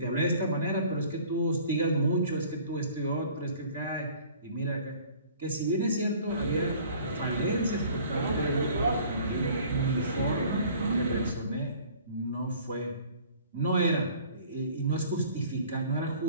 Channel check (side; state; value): both; inverted; correlation -0.51